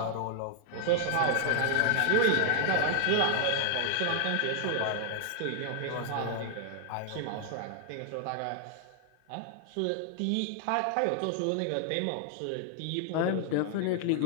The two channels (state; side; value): different; both; correlation 0.00